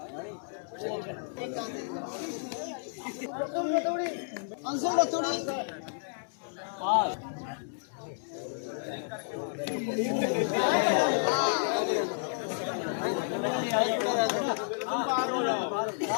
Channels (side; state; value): right; silent; digital silence